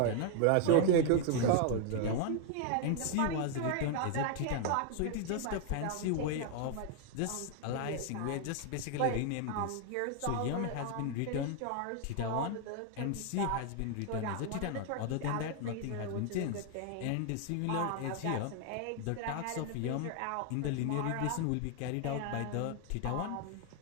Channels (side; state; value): both; different; correlation 0.00